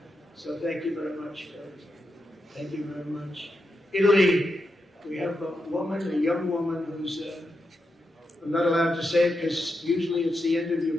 So thank you very much. Thank you very much. Italy, we have a young woman who's, I'm not allowed to say it because usually it's the end of your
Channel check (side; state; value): both; normal; correlation 0.86